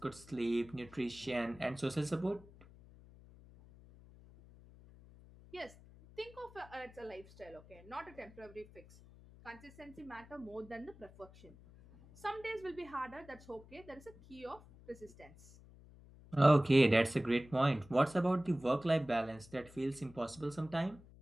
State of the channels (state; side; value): noise; left; hum, 21 dB below the sound